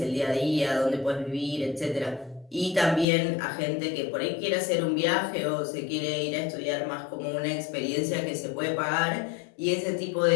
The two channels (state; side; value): drops out; right; at 3.1 s